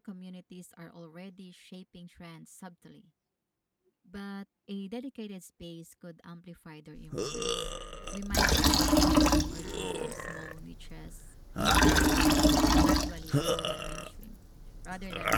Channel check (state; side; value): identical; both; correlation 1.00